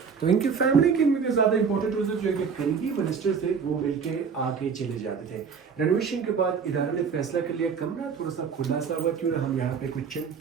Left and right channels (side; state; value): left; quieter; 6.1 dB